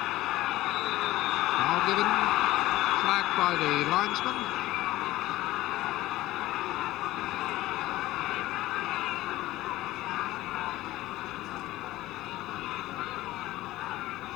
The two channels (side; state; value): right; quieter; 16.8 dB